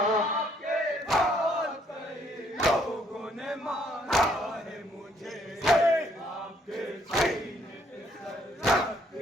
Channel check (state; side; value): normal; both; correlation 0.67